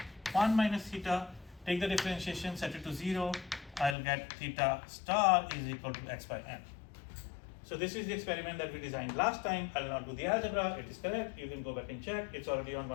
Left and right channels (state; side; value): drops out; right; at 4.0 s